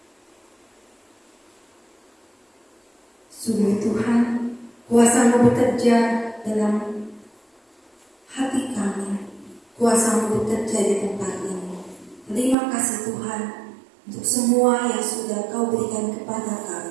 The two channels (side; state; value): left; drops out; at 12.6 s